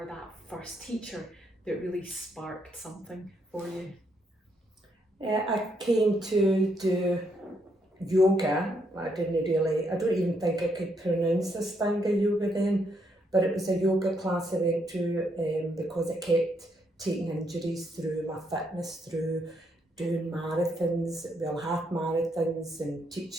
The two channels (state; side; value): normal; both; correlation 0.75